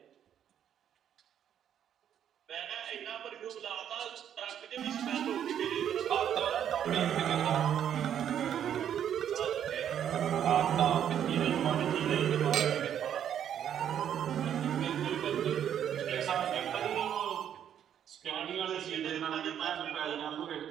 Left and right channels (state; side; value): quieter; left; 9.5 dB